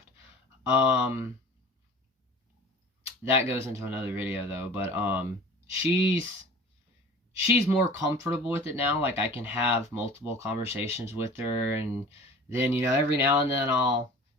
That goes into another video though, but, she's more comfortable with it now. Like, I can have multiple conversations with her, and then, every now and then I'll,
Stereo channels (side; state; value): both; normal; correlation 0.42